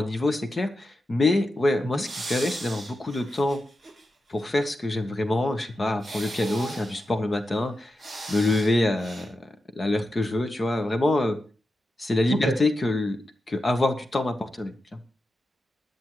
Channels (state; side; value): normal; both; correlation 0.89